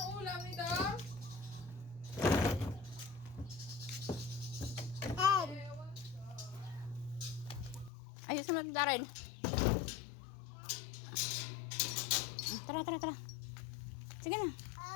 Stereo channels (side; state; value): right; drops out; at 7.9 s